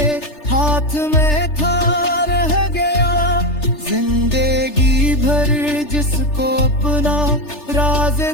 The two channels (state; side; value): late; right; 3.3 ms